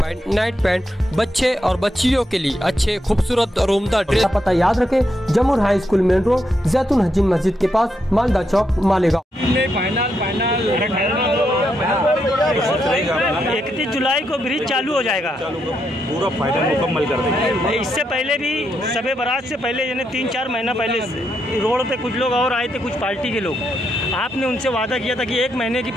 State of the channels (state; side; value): normal; both; correlation 0.81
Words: night pant, बच्चे और बच्चियों के लिए अच्छे खूबसूरत और उम्दा ड्रेस। पता याद रखें, जमुर हाई स्कूल मेन रोड, जैतून हजीन मस्जिद के पास, मालदा चौक, मालेगांव। 31 जुलाई को ब्रिज चालू हो जाएगा, पूरा फाइनल मुकम्मल कर देंगे। इससे पहले भी शबे बारात से पहले यानी 3-4 महीना पहले रोड पे कुछ लोग और आए थे, कुछ पार्टी के लोग। आपने उनसे वादा किया था कि 1 महीने की